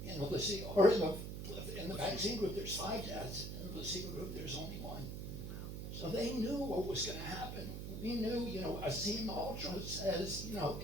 In the placebo, or in the vaccine group, there's 5 deaths. In the placebo group, there's only 1. So they knew what was going to happen. We knew, Asim Ultra says,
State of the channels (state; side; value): noise; right; hum, 6 dB below the sound